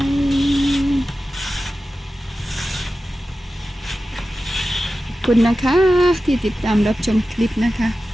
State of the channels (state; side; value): normal; both; correlation 0.94